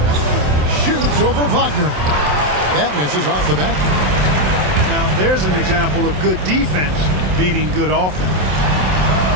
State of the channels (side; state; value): left; late; 27 ms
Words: Shoots over Wagner. That misses off the back. Now, there's an example of good defense beating good offense.